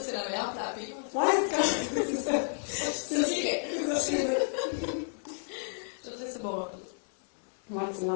c'est la meilleure puis la pire. Ouais, c'est ça. C'est vrai. C'est ça. Je vais te laisser boire un peu d'eau. Moi, tu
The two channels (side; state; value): right; silent; 57 dB below the other